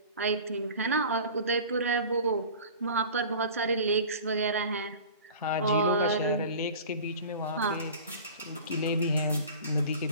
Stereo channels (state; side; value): inverted; both; correlation -0.40